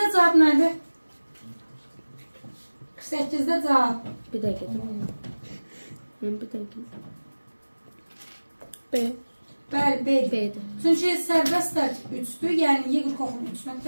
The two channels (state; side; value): inverted; both; correlation -1.00